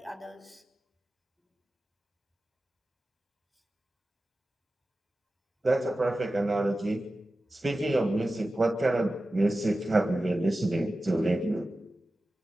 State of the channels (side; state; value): both; normal; correlation 0.94